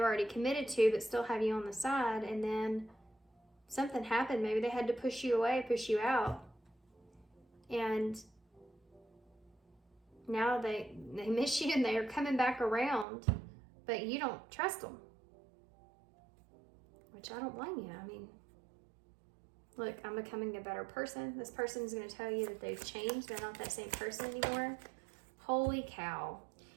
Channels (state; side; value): drops out; left; at 13.1 s